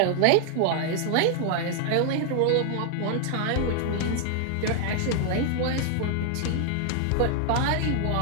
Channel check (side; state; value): both; different; correlation 0.00